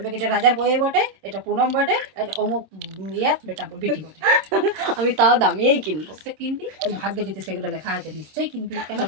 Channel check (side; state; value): left; late; 26 ms